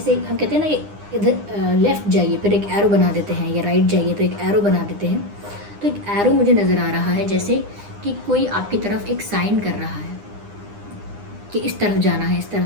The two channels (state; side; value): late; left; 9.8 ms